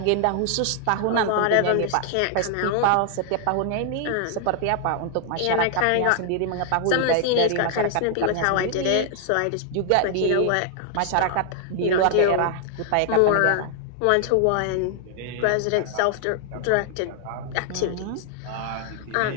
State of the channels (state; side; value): different; both; correlation 0.00